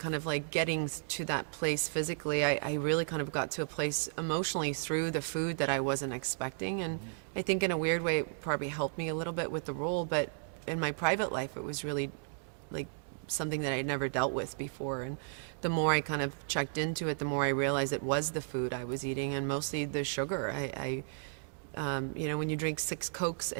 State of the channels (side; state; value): left; silent; digital silence